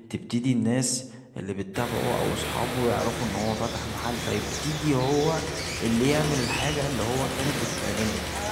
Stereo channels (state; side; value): identical; both; correlation 1.00